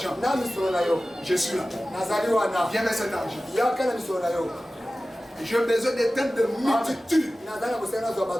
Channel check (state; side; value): normal; both; correlation 0.96